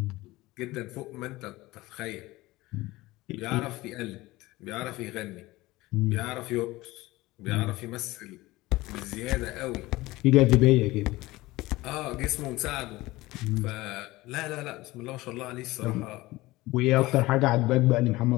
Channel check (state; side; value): quieter; right; 19.3 dB